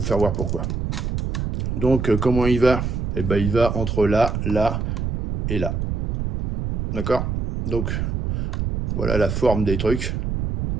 faire voir pourquoi. Donc, comment il va? Eh ben, il va entre là, là et là. D'accord? Donc, voilà la forme des trucs.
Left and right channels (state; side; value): noise; right; rumble, 2 dB below the sound